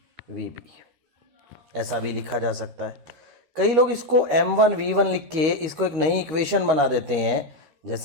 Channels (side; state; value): left; late; 13 ms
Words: ऐसा भी लिखा जा सकता है। कई लोग इसको M1V1 लिख के इसको एक नई इक्वेशन बना देते हैं,